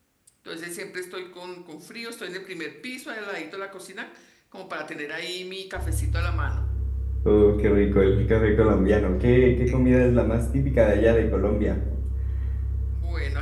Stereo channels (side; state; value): both; identical; correlation 1.00